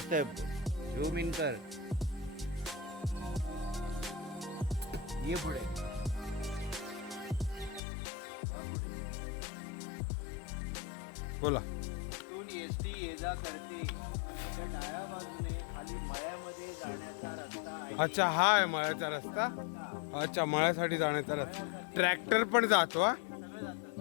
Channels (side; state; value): right; drops out; at 7.8 s